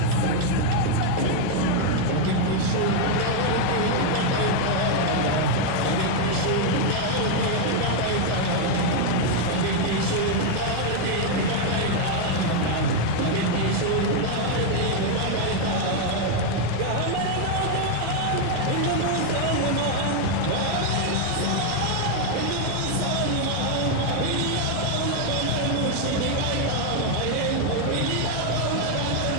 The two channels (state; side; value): different; both; correlation 0.01